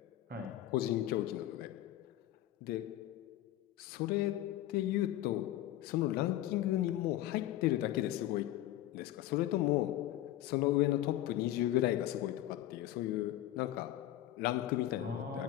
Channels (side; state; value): right; quieter; 14.0 dB